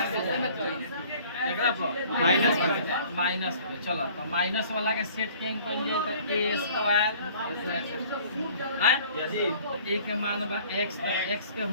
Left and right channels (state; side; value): inverted; both; correlation -0.52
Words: माइनस पे चलो तो माइनस वाला के सेट के तो a स्क्वायर a के मान बा x के